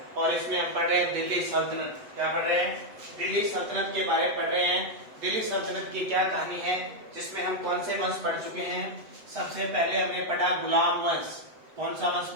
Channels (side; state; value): left; late; 8.0 ms